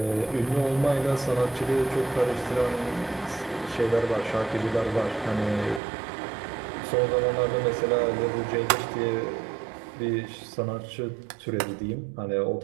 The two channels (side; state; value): left; drops out; at 5.8 s